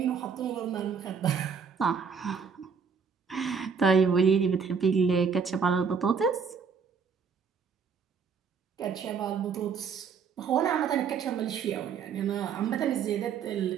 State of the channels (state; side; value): quieter; left; 6.1 dB